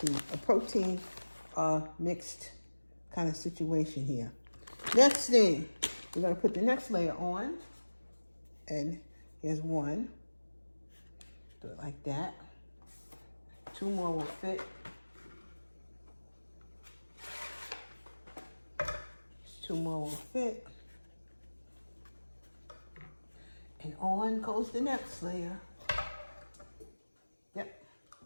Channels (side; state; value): both; inverted; correlation -1.00